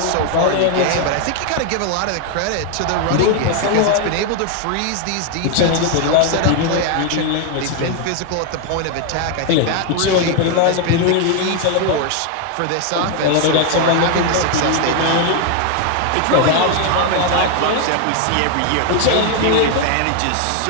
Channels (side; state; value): both; different; correlation 0.01